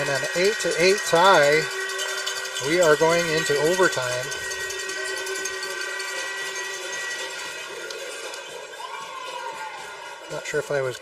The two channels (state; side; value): identical; both; correlation 1.00